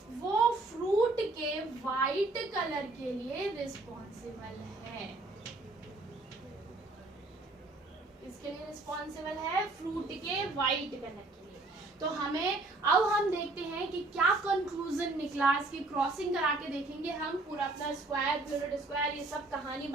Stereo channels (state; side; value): quieter; left; 3.1 dB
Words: वो फ्रूट के वाइट कलर के लिए रिस्पॉन्सिबल है। इसके लिए रिस्पॉन्सिबल है फ्रूट के वाइट कलर के लिए। तो अब हम देखते हैं कि क्या कंक्लूजन निकला। इसकी क्रॉसिंग करा के देखेंगे हम, पूरा अपना स्क्वायर, यूनिट स्क्वायर, ये सब कहानी